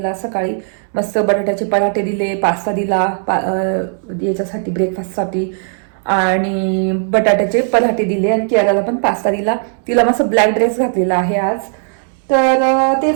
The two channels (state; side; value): silent; left; 66 dB below the other